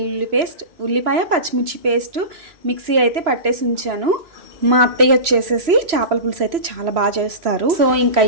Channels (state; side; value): late; left; 3.0 ms